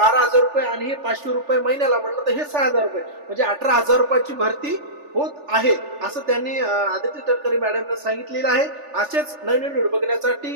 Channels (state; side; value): late; left; 3.4 ms